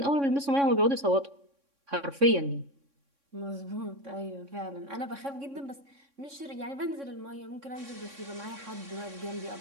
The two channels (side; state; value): left; late; 3.6 ms